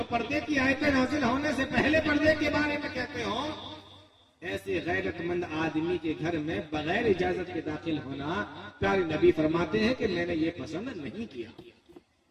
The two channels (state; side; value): identical; both; correlation 1.00